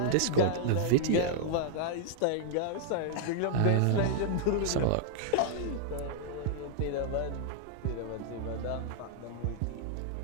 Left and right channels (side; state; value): both; different; correlation -0.01